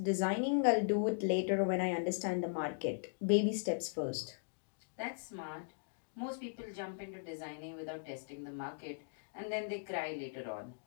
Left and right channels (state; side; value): silent; right; digital silence